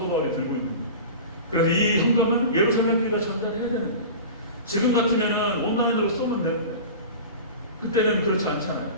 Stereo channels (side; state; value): both; inverted; correlation -0.34